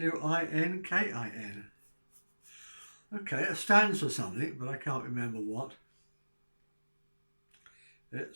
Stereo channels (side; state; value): both; inverted; correlation -1.00